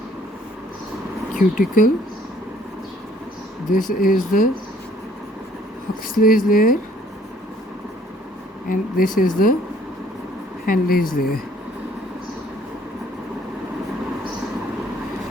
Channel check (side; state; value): both; normal; correlation 0.61